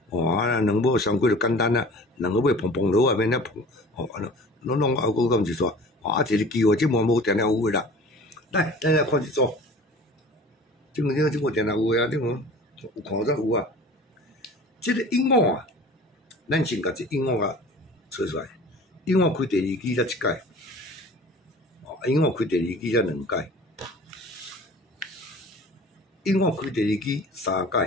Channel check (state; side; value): normal; both; correlation 0.43